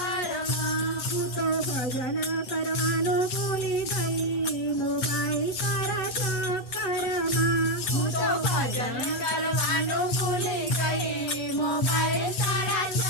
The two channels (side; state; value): right; late; 8.4 ms